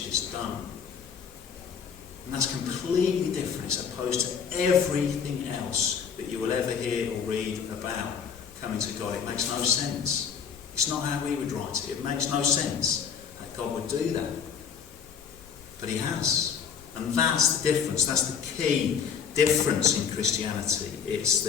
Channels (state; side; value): quieter; right; 7.1 dB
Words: It's done. And that's completely different as opposed to everything else that you will ever hear or read about coming to God. It makes no sense. It's not how we would write it. It makes no sense that God would do that. But he has. And that's the difference. That's the key difference in Christianity. It's